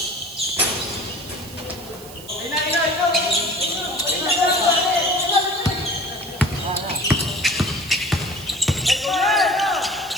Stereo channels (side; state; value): right; noise; hiss, 17 dB below the sound